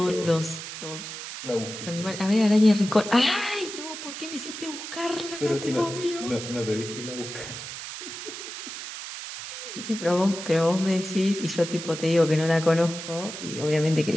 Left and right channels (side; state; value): right; noise; hiss, 9 dB below the sound